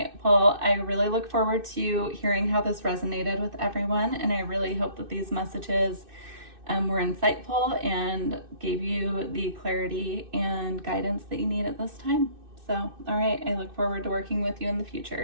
Well, I really look forward to hearing how this resonated with everyone, and I really hope that these messages were insightful and gave you the clarity and guidance that you need at this time. So, all right. I look forward to working with you in the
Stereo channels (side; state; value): left; late; 2.6 ms